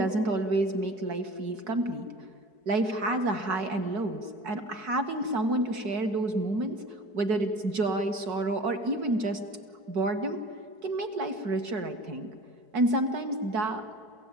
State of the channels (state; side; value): late; left; 4.6 ms